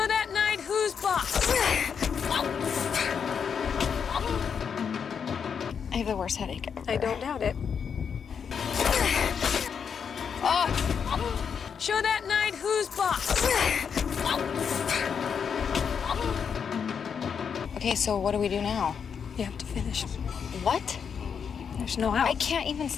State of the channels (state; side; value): quieter; right; 6.9 dB